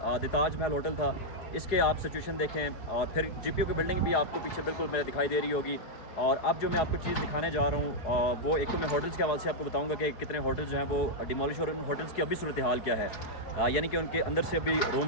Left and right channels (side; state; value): right; late; 4.7 ms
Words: ताज महल होटल था, इसके आप सिचुएशन देखें। और फिर GPO की बिल्डिंग भी आपको पीछे बिल्कुल मेरे दिखाई दे रही होगी। और अब जो मैं आपको चीज़ दिखाने जा रहा हूँ वो एक तो मैं होटल्स के हवाले से आपको बताऊँगा कि कितने होटल्स जो हैं वो डिमोलिश और उन होटल्स की अभी सूरत हाल क्या है, यानी कि उनके अंदर से अभी